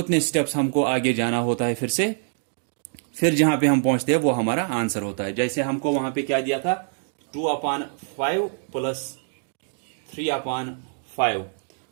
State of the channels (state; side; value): silent; left; digital silence